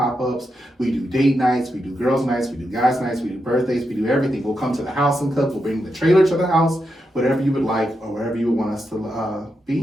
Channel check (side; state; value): both; normal; correlation 0.85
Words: We do date nights, we do girls nights, we do guys nights, we do birthdays, we do everything. We'll come to the house and cook. We'll bring the trailer to the house. Whatever you would like or wherever you would want us to